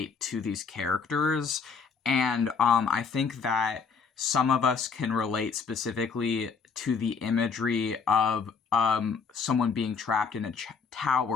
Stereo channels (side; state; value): right; quieter; 5.6 dB